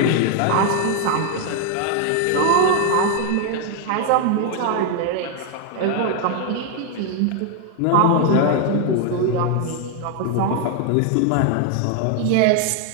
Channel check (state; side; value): different; both; correlation 0.00